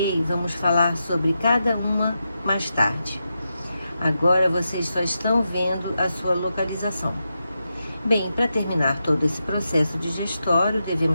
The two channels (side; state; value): both; inverted; correlation -0.87